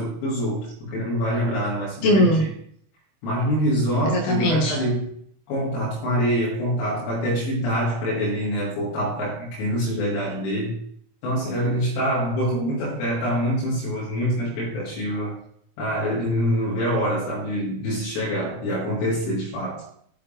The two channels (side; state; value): right; late; 26 ms